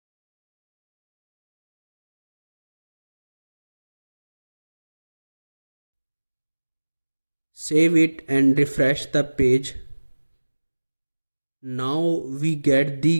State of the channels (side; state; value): both; inverted; correlation -1.00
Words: Save it and refresh the page. Now we get